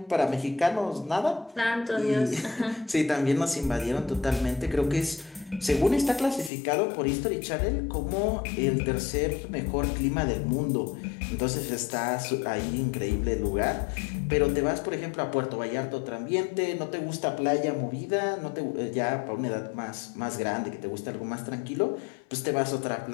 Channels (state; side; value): drops out; right; at 6.5 s